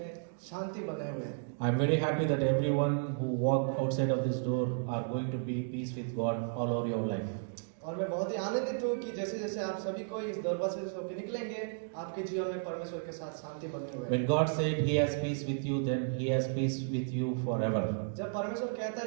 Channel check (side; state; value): left; silent; digital silence